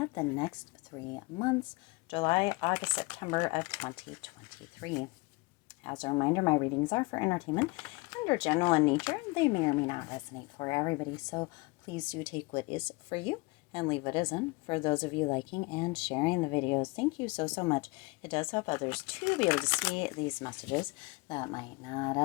the next 3 months, July, August, September of 2023. As a reminder, my readings are for entertainment and are general in nature. They may or may not resonate for everybody, so please do take what is for you and leave what isn't. For those of you liking and sharing the videos, thank you so much. It does help others to be able to see these messages that might not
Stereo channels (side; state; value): right; quieter; 25.3 dB